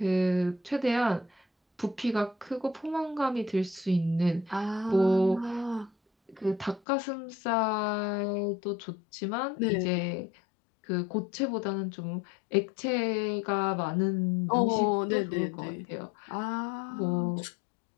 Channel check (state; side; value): drops out; right; at 6.8 s